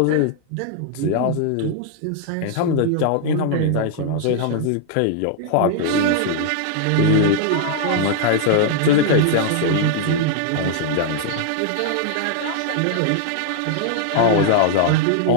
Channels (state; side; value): different; both; correlation 0.00